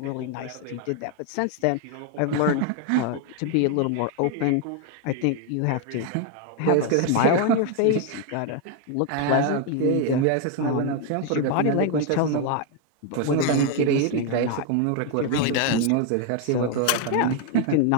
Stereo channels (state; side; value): different; both; correlation 0.01